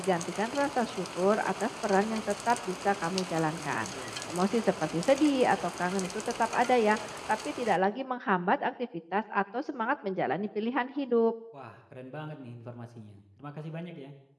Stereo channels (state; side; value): identical; both; correlation 1.00